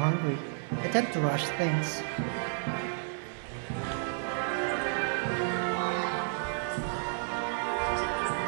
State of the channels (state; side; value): silent; left; 57 dB below the other